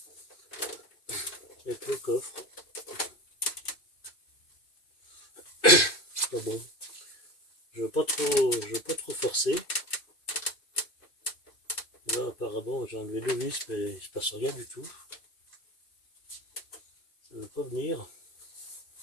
coffre. Pas bon. Je veux pas trop forcer. Là apparemment j'ai enlevé deux vis mais il se passe rien du tout. Ça ne veut pas venir.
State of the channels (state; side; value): late; right; 2.5 ms